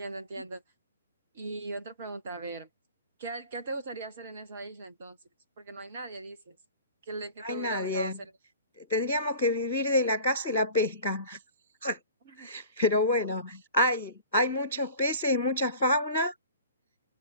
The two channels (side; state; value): both; inverted; correlation -0.42